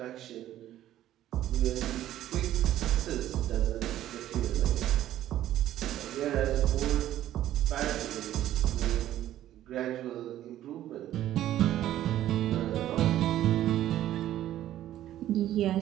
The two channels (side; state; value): left; quieter; 12.8 dB